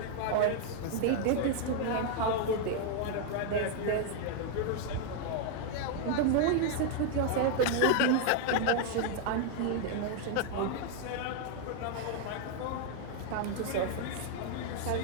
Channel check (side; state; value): both; different; correlation 0.00